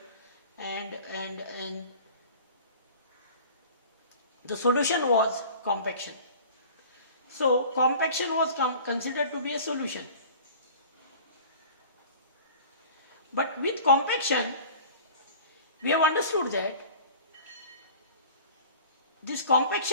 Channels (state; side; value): inverted; both; correlation -0.43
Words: and the solution was compaction. So compaction was considered to be a solution. But with compaction, we have understood that this